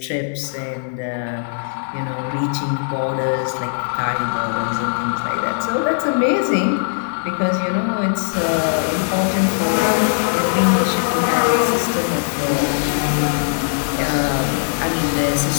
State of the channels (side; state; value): right; silent; digital silence